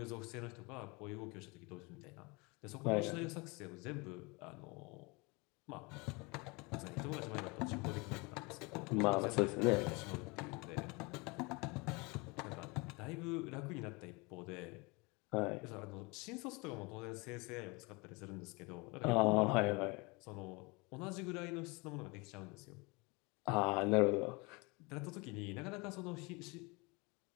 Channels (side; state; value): right; quieter; 27.4 dB